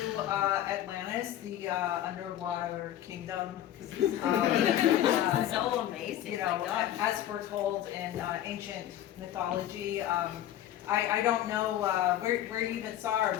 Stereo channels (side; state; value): right; quieter; 12.2 dB